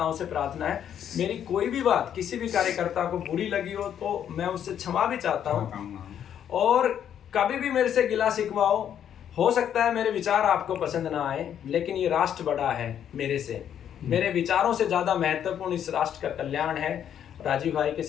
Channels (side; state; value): right; quieter; 9.5 dB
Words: से प्रार्थना है। मेरी कोई भी बात किसी भी कार्यकर्ता को बुरी लगी हो तो मैं उससे क्षमा भी चाहता हूँ, और कभी भी मेरे से गिला शिकवा हो सकता है मेरे विचार आपको पसंद ना आए, लेकिन ये राष्ट्र बड़ा है मेरे से, मेरे विचारों से ज्यादा महत्वपूर्ण इस राष्ट्र का कल्याण है। राजीव भाई के